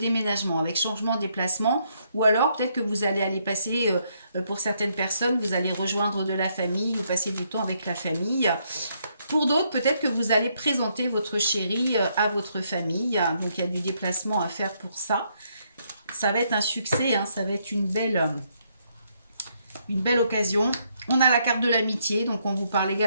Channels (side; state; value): both; inverted; correlation -0.74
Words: avec changement de déplacement ou alors peut-être que vous allez aller passer, pour certaines personnes, vous allez rejoindre de la famille ou passer du temps avec la famille. Pour d'autres, peut-être que vous allez présenter votre chéri à votre famille. Donc il y a du déplacement à faire pour ça. Ça va être un succès, hein, ça va être une belle occasion. On a la carte de l'amitié, donc on vous parle